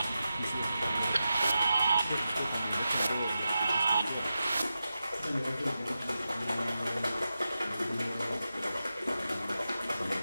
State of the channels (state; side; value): inverted; both; correlation -0.90